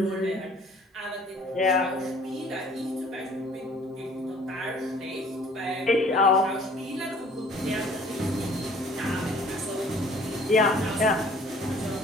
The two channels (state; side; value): normal; both; correlation 0.53